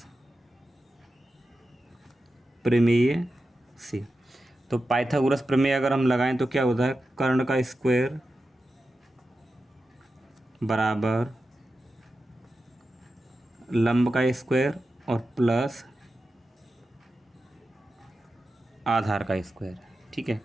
प्रमेय से, तो पाइथागोरस प्रमेय अगर हम लगाएं तो क्या होता है, कर्ण का स्क्वायर बराबर लंब का स्क्वायर और प्लस आधार का स्क्वायर। ठीक है,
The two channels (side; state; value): both; normal; correlation 0.91